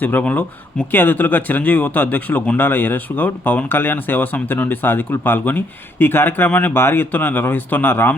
ముఖ్య అతిథులుగా చిరంజీవి యువత అధ్యక్షులు గుండాల యరేష్ గౌడ్, పవన్ కళ్యాణ్ సేవా సమితి నుండి సాధికులు పాల్గొని ఈ కార్యక్రమాన్ని భారీ ఎత్తున నిర్వహిస్తున్న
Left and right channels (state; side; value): normal; both; correlation 0.70